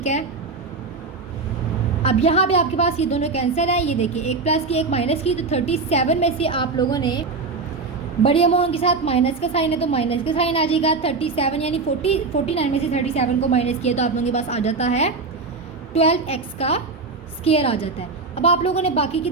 है। अब यहाँ पे आपके पास ये दोनों कैंसिल है, ये देखिए एक प्लस की एक माइनस की, तो 37 में से आप लोगों ने बड़ी अमाउंट के साथ माइनस का साइन है तो माइनस का साइन आ जाएगा। 37 यानी 49 में से 37 को माइनस किया तो आप लोगों के पास आ जाता है 12x का स्क्वायर आ जाता है। अब आप लोगों ने बाकी की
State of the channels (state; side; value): quieter; left; 4.1 dB